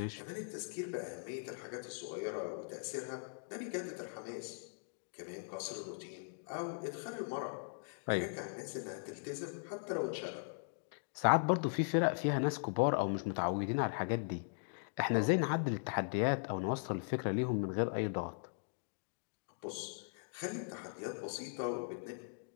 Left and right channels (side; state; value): right; silent; digital silence